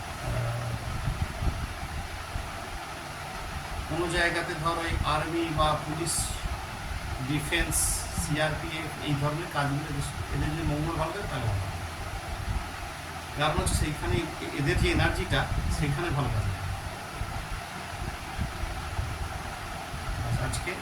কোনো জায়গাতে ধর ওই আর্মি বা পুলিশ, ডিফেন্স, সিআরপিএফ এই ধরনের কাজগুলো এদের যদি মঙ্গল ভালো থাকে তাহলে ভালো। কারণ হচ্ছে সেইখানে এদের যে এনার্জিটা সেখানে ভালো কাজ। আজকে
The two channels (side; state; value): both; identical; correlation 1.00